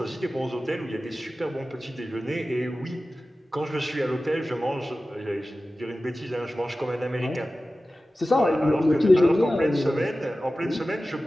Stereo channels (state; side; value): normal; both; correlation 0.95